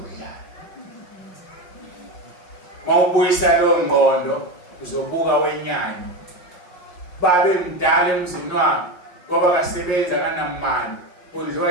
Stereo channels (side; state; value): right; late; 5.5 ms